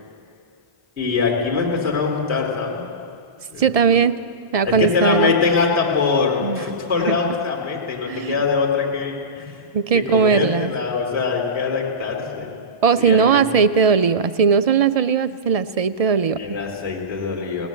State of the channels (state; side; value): late; left; 1.7 ms